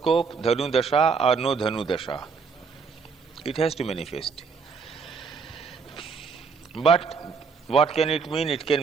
Dhanu Dasha or no Dhanu Dasha, it has to manifest. But what can it mean? It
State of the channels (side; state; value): left; quieter; 5.4 dB